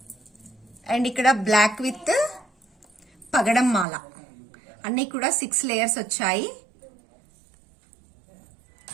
And ఇక్కడ బ్లాక్ విత్ పగడం మాల. అన్ని కూడా 6 లేయర్స్ వచ్చాయి.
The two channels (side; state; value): left; drops out; at 3.9 s